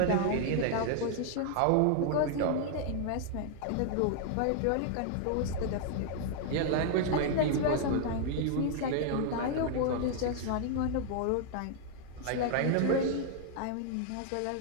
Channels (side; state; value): both; different; correlation 0.00